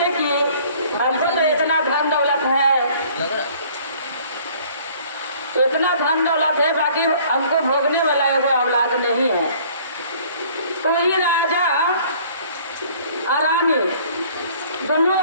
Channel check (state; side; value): inverted; both; correlation -0.55